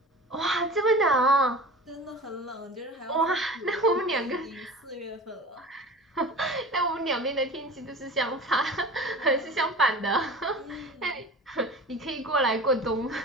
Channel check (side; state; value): both; normal; correlation 0.36